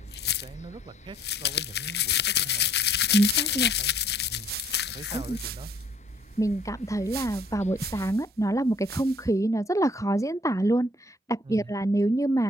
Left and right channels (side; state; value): both; normal; correlation 0.61